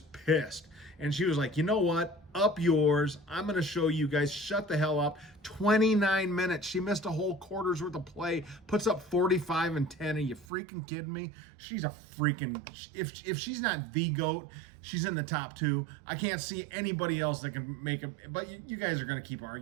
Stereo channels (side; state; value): left; drops out; at 10.5 s